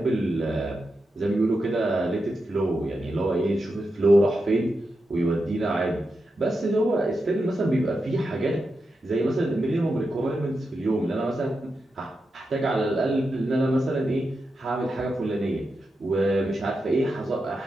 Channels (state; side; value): normal; both; correlation 0.88